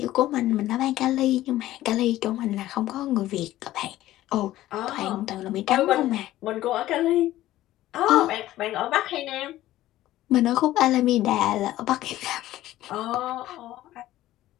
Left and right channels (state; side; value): quieter; right; 14.9 dB